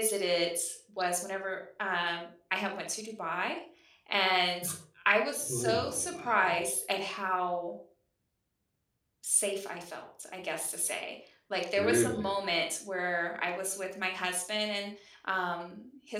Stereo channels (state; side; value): identical; both; correlation 1.00